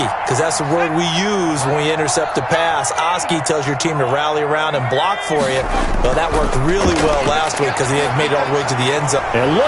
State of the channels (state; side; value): identical; both; correlation 1.00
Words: because that's the word we use when we intercept a pass. Oski tells your team to rally around and block for you. Well, that worked really well last week because he had made it all the way to the end zone. And